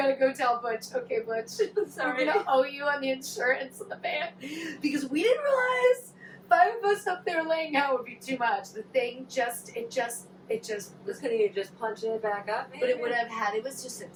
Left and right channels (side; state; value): both; identical; correlation 1.00